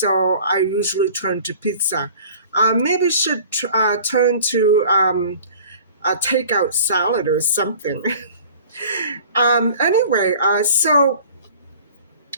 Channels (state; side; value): inverted; both; correlation -0.46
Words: I usually turn to pizza. Maybe should turn to a takeout salad or something. Anyway, so